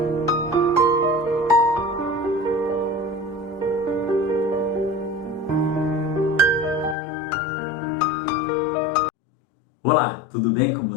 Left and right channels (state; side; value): drops out; right; at 7.0 s